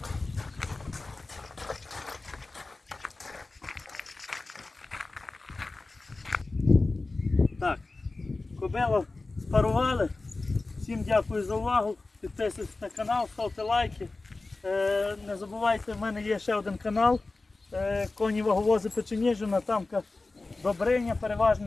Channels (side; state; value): right; quieter; 3.4 dB